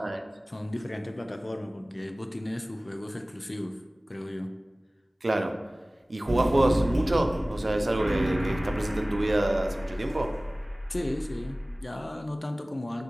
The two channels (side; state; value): both; normal; correlation 0.98